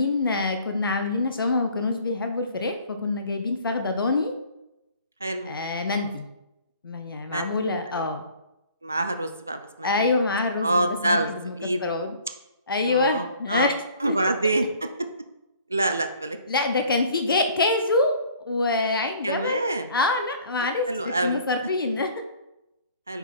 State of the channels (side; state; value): both; inverted; correlation -0.54